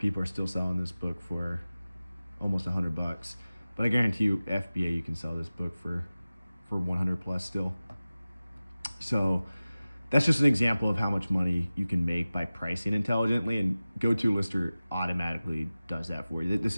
are still selling this book for almost $100. But I guarantee you FBA, you can sell this book for 100 plus still. So that's just an example of how much money you can make by pricing intelligently, and GoTo Lister automatically does that for you. This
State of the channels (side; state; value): both; inverted; correlation -0.97